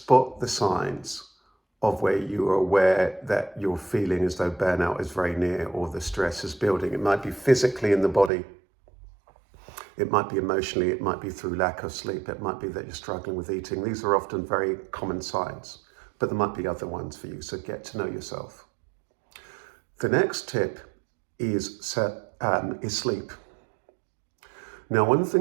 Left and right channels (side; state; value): left; drops out; at 8.3 s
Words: the signs of where you are aware that you're feeling as though burnout is very near or the stress is building. It might be physically in the body. It might be emotionally. It might be through lack of sleep. It might be that you're struggling with eating. These are often very common signs, but there might be other ones for you. So get to know yourself. The next tip is sleep. Now, one of the